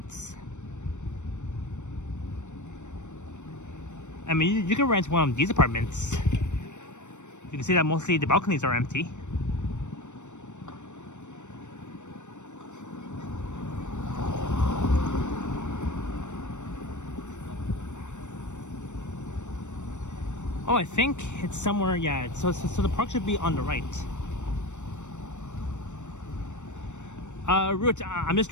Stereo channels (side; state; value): right; late; 0.84 ms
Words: I mean, you can rent one of these apartments. You can see that mostly the balconies are empty. Oh, I think it's somewhere, yeah. So the park should be on the right. Root, I'm just